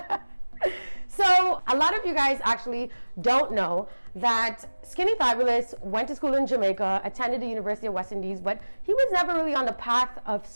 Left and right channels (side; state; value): both; inverted; correlation -1.00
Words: So, a lot of you guys actually don't know that Skinny Fabulous went to school in Jamaica, attended the University of West Indies, but he was never really on the path of